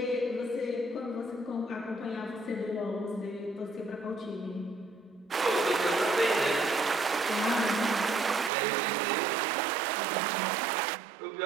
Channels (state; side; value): drops out; left; at 8.5 s